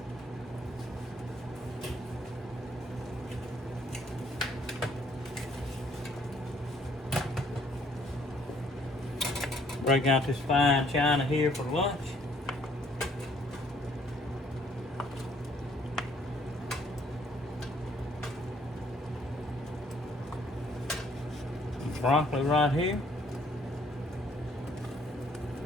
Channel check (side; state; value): both; normal; correlation 0.63